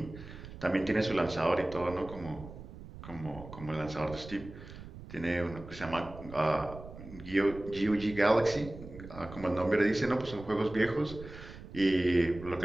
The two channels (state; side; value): noise; right; rumble, 14 dB below the sound